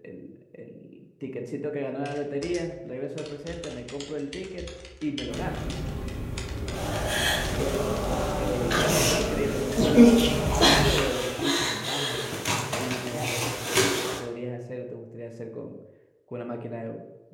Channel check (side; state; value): both; identical; correlation 1.00